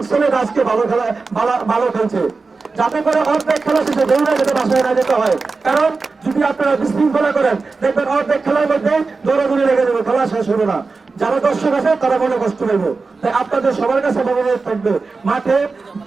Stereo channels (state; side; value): quieter; left; 4.2 dB